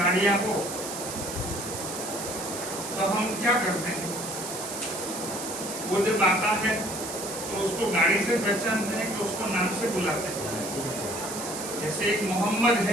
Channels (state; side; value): noise; right; hiss, 7 dB below the sound